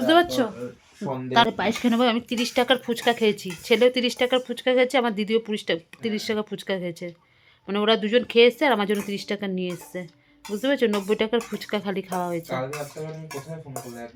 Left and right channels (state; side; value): identical; both; correlation 1.00